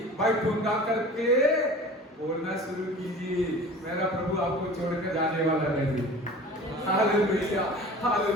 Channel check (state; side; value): normal; both; correlation 0.41